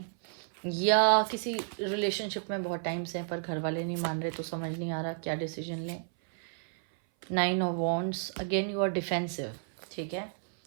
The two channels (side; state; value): left; silent; 57 dB below the other